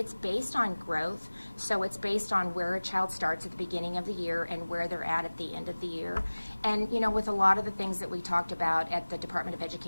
based on growth, so it's based on where a child starts at the beginning of the year and where they're at the end of the year. And, you know, with a lot of the things that we talked about at the Department of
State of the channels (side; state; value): both; inverted; correlation -1.00